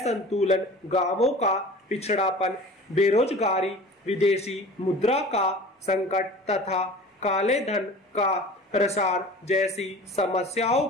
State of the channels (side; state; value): both; normal; correlation 0.41